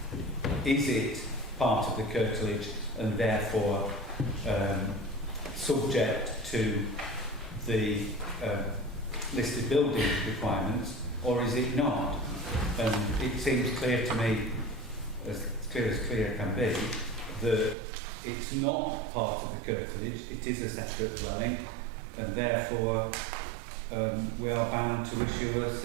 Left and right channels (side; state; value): left; drops out; at 17.8 s